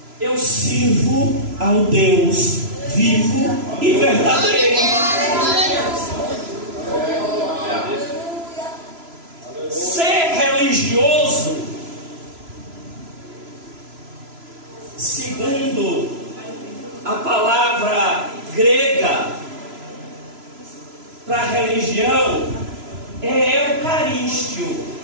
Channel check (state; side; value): late; left; 3.0 ms